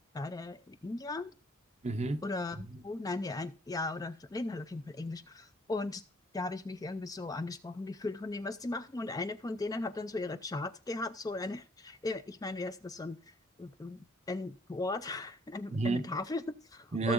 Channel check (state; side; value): normal; both; correlation 0.64